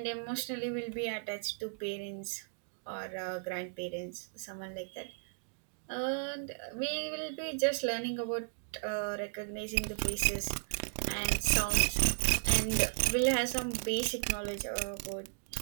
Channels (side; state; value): left; silent; digital silence